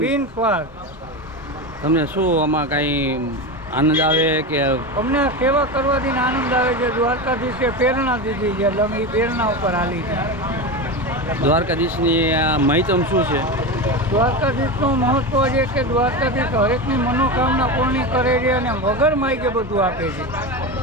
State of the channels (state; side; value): normal; both; correlation 0.21